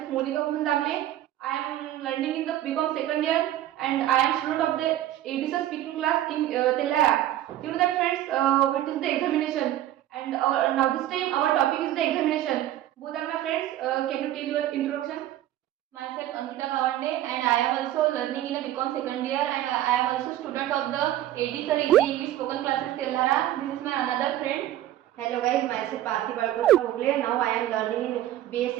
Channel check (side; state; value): left; quieter; 13.3 dB